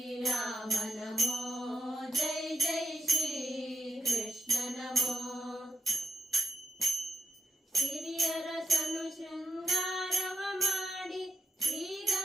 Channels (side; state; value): both; normal; correlation 0.81